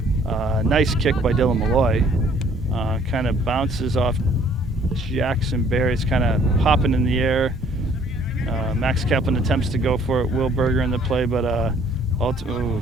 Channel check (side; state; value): both; normal; correlation 0.60